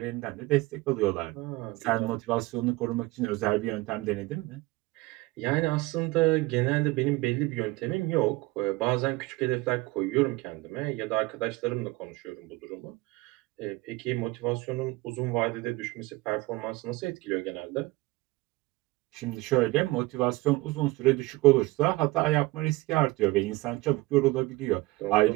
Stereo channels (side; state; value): left; quieter; 20.9 dB